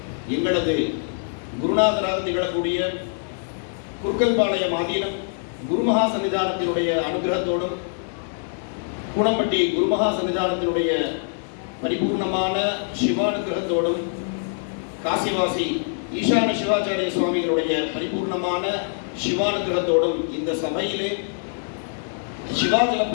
எங்களது குருநாதராக திகழக்கூடிய குர்க்கல்பாளையம் ஆதீனம் குருமகா சன்னிதானத்தினுடைய அனுகிரகத்தோடும் கூடம்பட்டி குருமகா சன்னிதானத்தினுடைய பரிபூர்ணமான சிவானுகிரகத்தோடும் காசிவாசி ஈசான சிவாச்சாரிய சுவாமிகளுடைய பரிபூர்ணமான சிவானுகிரகத்தோடும் இந்த சபையிலே சிவாஜல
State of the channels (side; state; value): right; silent; 63 dB below the other